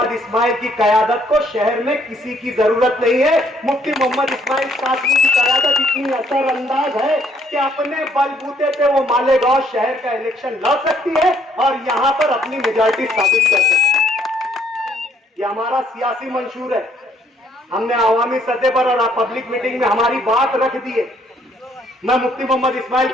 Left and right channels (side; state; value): both; normal; correlation 0.66